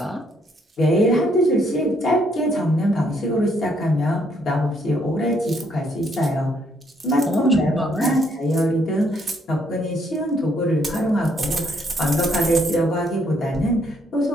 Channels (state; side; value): normal; both; correlation 0.70